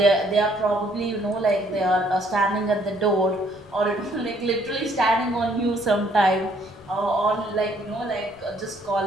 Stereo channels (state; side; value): noise; left; rumble, 27 dB below the sound